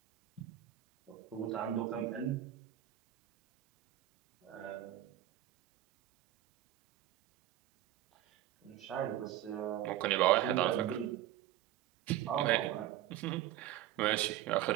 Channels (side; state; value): left; quieter; 13.1 dB